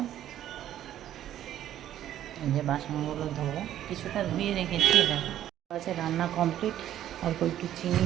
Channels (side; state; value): left; quieter; 11.8 dB